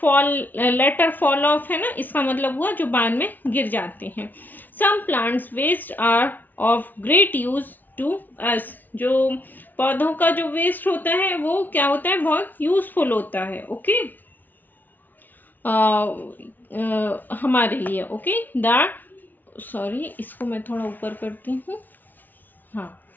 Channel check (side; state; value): right; late; 0.085 ms